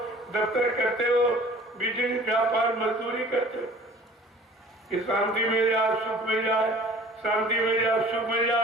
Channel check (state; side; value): normal; both; correlation 0.48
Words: दफ्तर करते हो, बिजनेस व्यापार मजदूरी करते हो कि शांति मिल जाए, सुख मिल जाए, शांति मिल जाए, सुख मिल